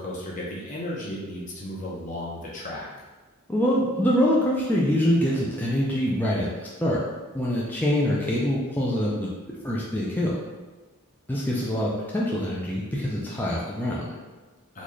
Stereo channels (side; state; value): both; normal; correlation 0.67